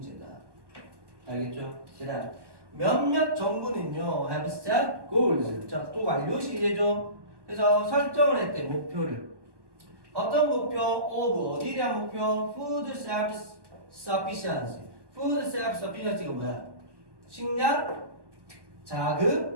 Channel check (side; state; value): left; late; 1.2 ms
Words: 알겠죠? 그다음 몇몇 정부는요 have set goals. 자, 또 완료 시제죠. 그래서 설정을 했대 목표를. 어떤 목표? 어디에 대한 목표? Food self-sufficiency. Food self-sufficiency가 뭐야? 식량,